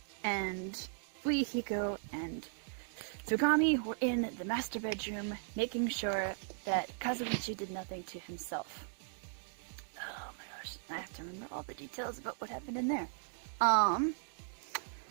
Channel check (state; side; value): silent; left; digital silence